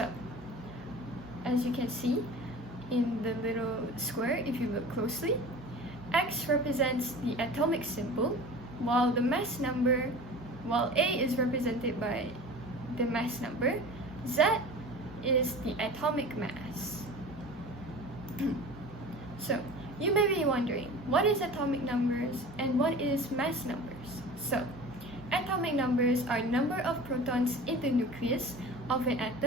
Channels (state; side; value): normal; both; correlation 0.38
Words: as you can see in the little square, if you look closely, X represents the atomic symbol, while the mass number, while A is represented by the mass number, Z is the atomic mass. So, you may be wondering, what is atomic numbers and what is mass numbers? So, atomic numbers are number of protons in the nucleus of an